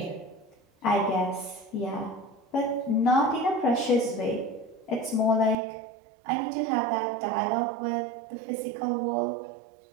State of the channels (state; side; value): drops out; left; at 5.6 s